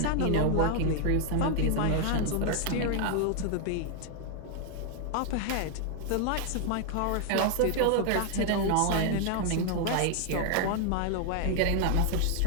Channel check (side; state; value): both; different; correlation 0.00